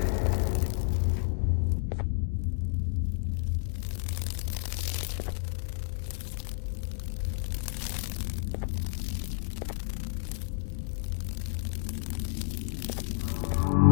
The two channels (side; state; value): right; silent; digital silence